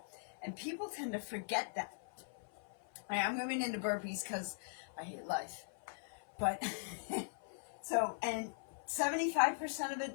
And people tend to forget that. I'm moving into burpees because I hate life. But, so, and 75% of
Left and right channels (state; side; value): silent; right; 51 dB below the other